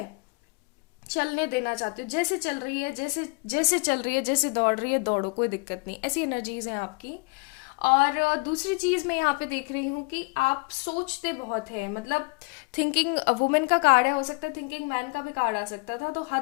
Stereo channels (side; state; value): right; quieter; 29.5 dB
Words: चलने देना चाहते हो, जैसे चल रही है, जैसे जैसे चल रही है, जैसे दौड़ रही है दौड़ो, कोई दिक्कत नहीं, ऐसी एनर्जीज हैं आपकी। और दूसरी चीज मैं यहाँ पे देख रही हूँ कि आप सोचते बहुत हैं। मतलब थिंकिंग वुमेन का कार्ड है, हो सकता है थिंकिंग मैन का भी कार्ड आ सकता था। तो